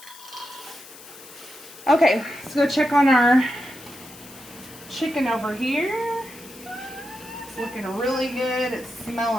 Okay, let's go check on our chicken over here. It's looking really good. It's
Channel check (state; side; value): noise; left; hiss, 18 dB below the sound